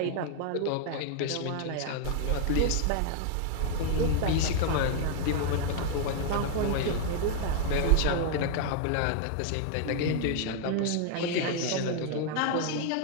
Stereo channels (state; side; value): different; both; correlation 0.00